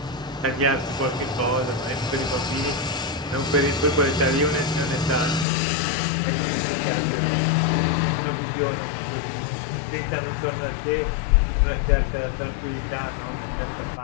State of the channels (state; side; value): drops out; right; at 5.5 s